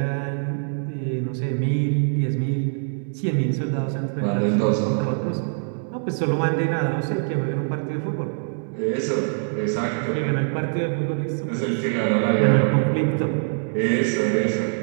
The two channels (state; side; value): silent; left; digital silence